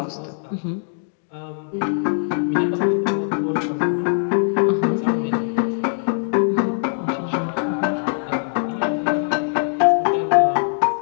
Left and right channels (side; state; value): right; silent; digital silence